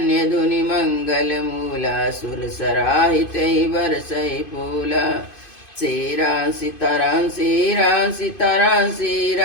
धुनि मंगल मूला, सुर सराहित बरसई फूला। सीरा सीताराम सीरा सीताराम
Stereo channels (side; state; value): right; late; 2.5 ms